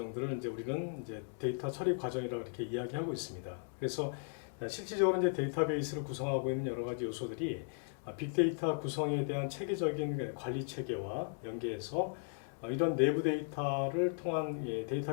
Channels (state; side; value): silent; right; 53 dB below the other